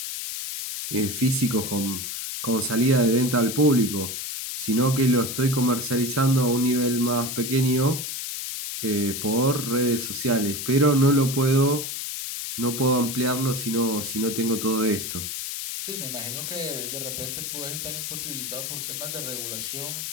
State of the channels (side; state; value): left; noise; hiss, 5 dB below the sound